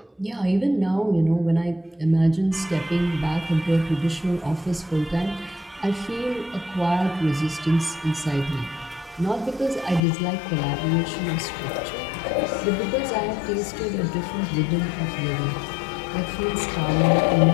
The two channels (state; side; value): drops out; right; at 10.0 s